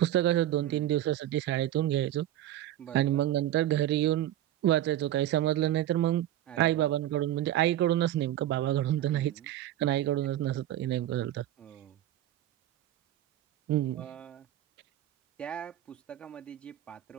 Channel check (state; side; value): quieter; left; 12.9 dB